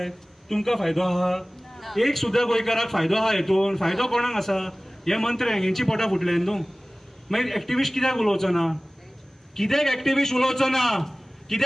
तुमकां फायदो आहा? एक सुद्दां गोंयकाराक फायदो आहा हेतून? फायदो कोणाक आसा? हे मंत्र्यांक, हेंची पोटां फुटल्यात न्हू. मागीर एक्टिव्हिस्ट कित्याक उलोवचो ना? कित्याक एक्टिव्हिस्ट उलोवचो ना?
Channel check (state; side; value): normal; both; correlation 0.98